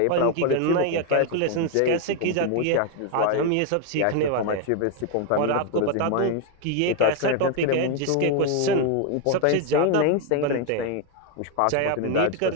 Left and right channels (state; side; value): different; both; correlation 0.01